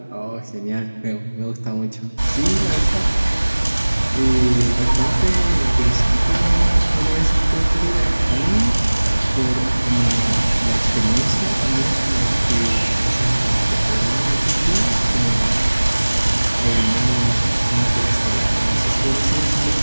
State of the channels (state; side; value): inverted; both; correlation -1.00